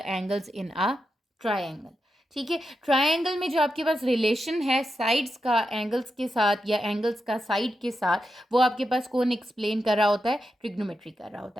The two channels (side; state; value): both; normal; correlation 0.87